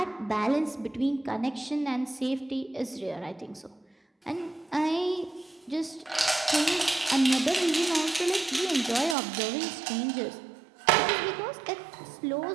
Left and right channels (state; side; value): drops out; left; at 9.2 s